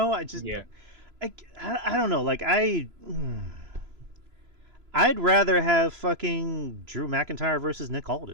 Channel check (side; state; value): left; late; 3.0 ms